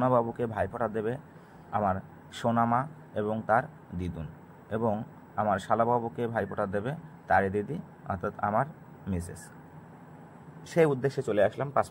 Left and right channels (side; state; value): both; identical; correlation 1.00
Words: ভাইফোঁটা দেবে আমার সোনামা এবং তার দিদুন, এবং আমার শালাবাবুকে ভাইফোঁটা দেবে তারই দিদি অর্থাৎ আমার মিসেস। সেই উদ্দেশ্যে চলে আসলাম